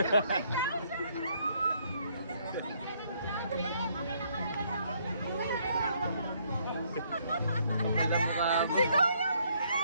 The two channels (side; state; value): both; inverted; correlation -0.68